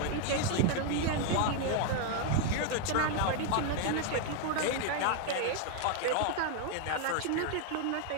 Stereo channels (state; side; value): different; both; correlation 0.01